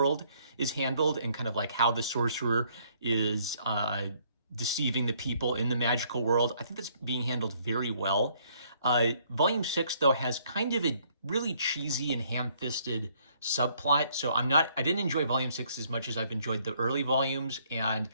is handled and kind of like how the sorcerer is deceiving the people in the magical world. I think that's being handled very well. Volume 6, though, has kind of a really cheesy and ham-fisted subplot. So I didn't enjoy Volume 6 as much as I've enjoyed the early volumes. And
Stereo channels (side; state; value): both; inverted; correlation -0.66